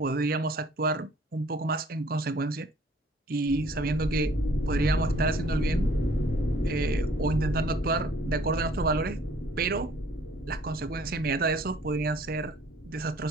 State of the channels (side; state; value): both; normal; correlation 0.57